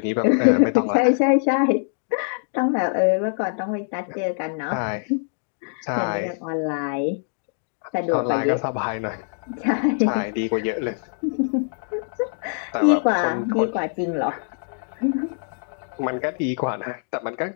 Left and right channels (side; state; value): right; silent; digital silence